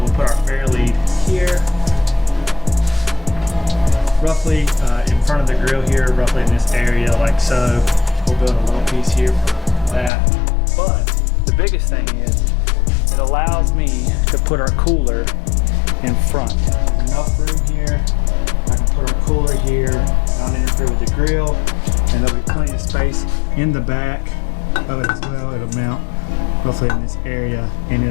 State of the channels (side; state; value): right; drops out; at 10.1 s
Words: put our fair lead here, roughly in front of the grill here, roughly in this area like so. We'll build a little piece here for that. But the biggest thing is it allows me to put our cooler in front. There's enough room here. I can put our cooler here, not interfere with the grill, and there'll be plenty of space in the back of it as well. It'll mount roughly in this area, and